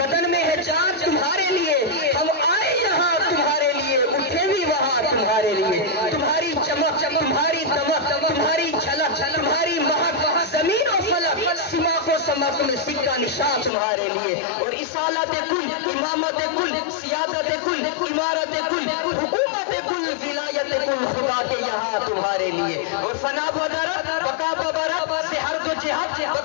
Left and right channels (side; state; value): right; drops out; at 13.7 s